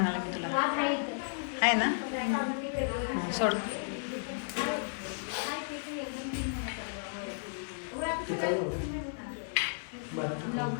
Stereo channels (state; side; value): silent; right; digital silence